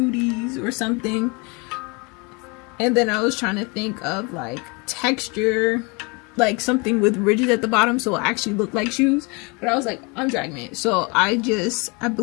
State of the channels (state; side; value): quieter; right; 29.6 dB